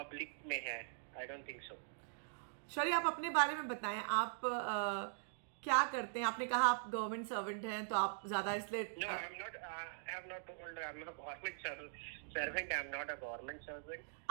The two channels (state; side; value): silent; left; digital silence